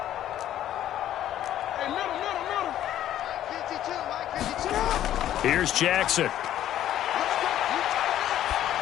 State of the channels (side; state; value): right; quieter; 12.0 dB